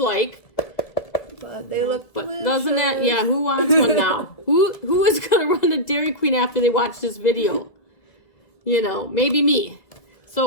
But they look delicious. Doesn't that, yeah, who wants one now? Who is going to run to Dairy Queen after they watch this video? You know, maybe me.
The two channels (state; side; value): late; right; 2.0 ms